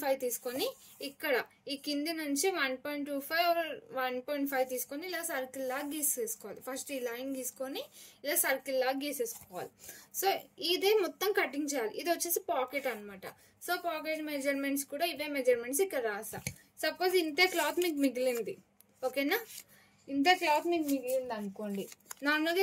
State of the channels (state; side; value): identical; both; correlation 1.00